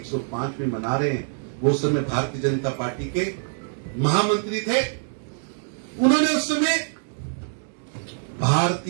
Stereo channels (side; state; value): left; silent; digital silence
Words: मना रहे हैं, वो समय भारतीय जनता पार्टी के महामंत्री थे। उन्होंने उस समय